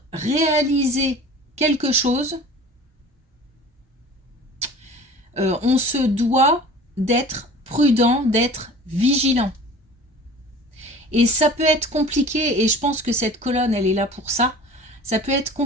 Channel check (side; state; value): both; normal; correlation 0.42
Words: réaliser quelque chose, on se doit d'être prudent, d'être vigilant. Et ça peut être compliqué, et je pense que cette colonne, elle est là pour ça. Ça peut être